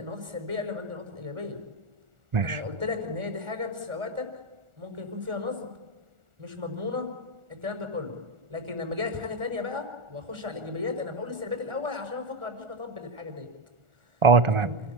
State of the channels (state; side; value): late; left; 1.4 ms